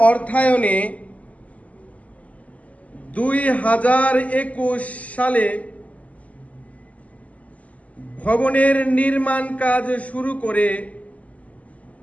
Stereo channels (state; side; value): late; right; 0.071 ms